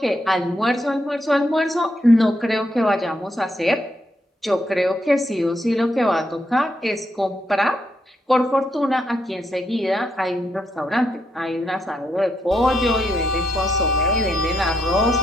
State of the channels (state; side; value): normal; both; correlation 0.79